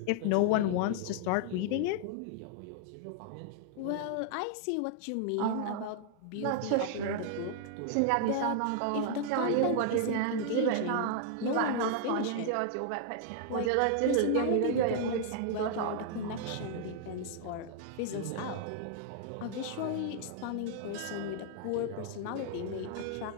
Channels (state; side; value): different; both; correlation -0.01